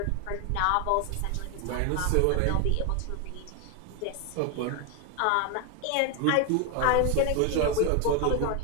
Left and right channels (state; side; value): different; both; correlation 0.01